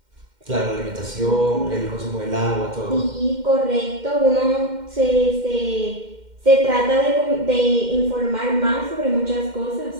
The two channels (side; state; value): left; late; 2.1 ms